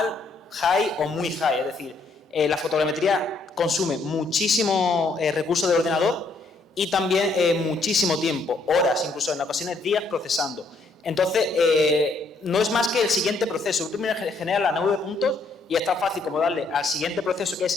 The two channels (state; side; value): quieter; right; 3.5 dB